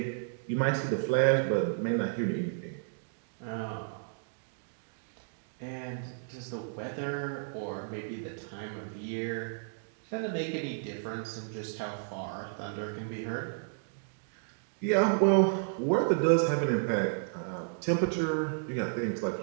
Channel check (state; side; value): silent; left; digital silence